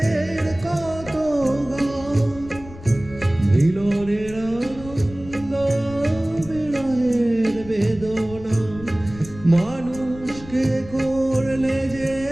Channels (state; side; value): noise; left; rumble, 16 dB below the sound